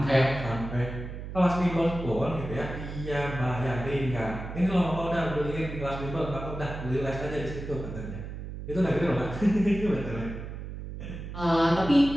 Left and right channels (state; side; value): noise; right; hum, 9 dB below the sound